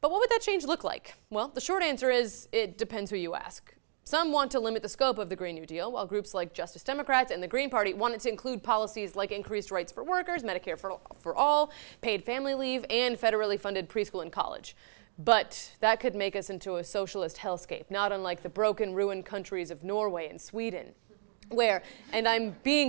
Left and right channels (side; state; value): left; silent; digital silence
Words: what would that change look like? Well, the short answer is it depends who you ask. Some want to limit the scope of the Green New Deal, while groups like Justice Democrats and the Green Party want it to include policies like increased rights for workers, Medicare for all, paid family leave, and federally funded preschool and college. But that could make us into a socialist hellscape, not unlike the broken, ruined countries of Norway and Sweden, where, and I'm